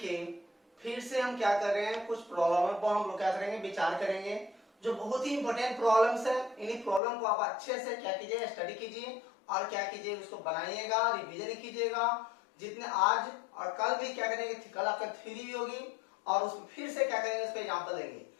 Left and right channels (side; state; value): right; drops out; at 7.0 s